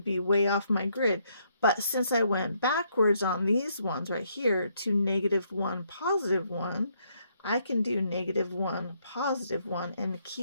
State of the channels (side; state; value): both; inverted; correlation -0.73